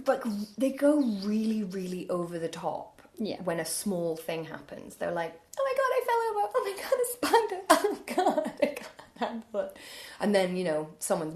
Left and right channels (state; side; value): identical; both; correlation 1.00